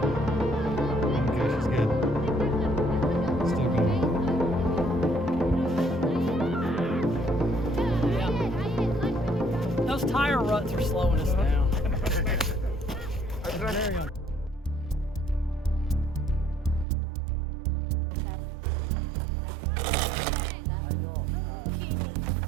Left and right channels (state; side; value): drops out; left; at 16.9 s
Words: Okay, she's good. Still going. Those tire ruts are slowing us down.